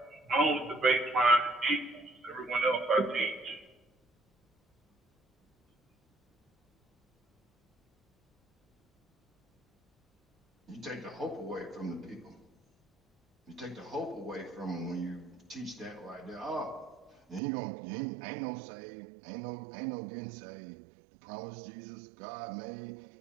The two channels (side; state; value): left; drops out; at 17.4 s